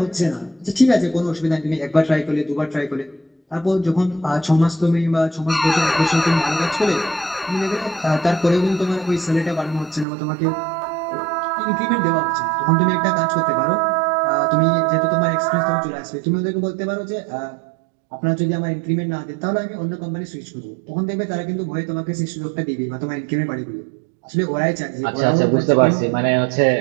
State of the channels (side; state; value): left; drops out; at 10.1 s